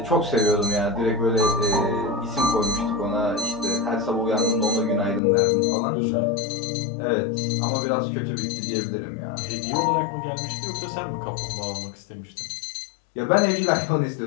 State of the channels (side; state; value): right; drops out; at 5.2 s